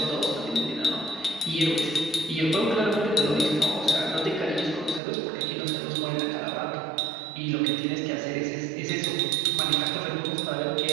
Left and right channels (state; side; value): drops out; left; at 5.0 s